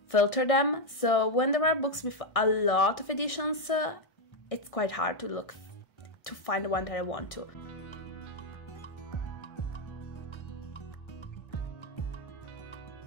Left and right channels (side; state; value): right; late; 1.6 ms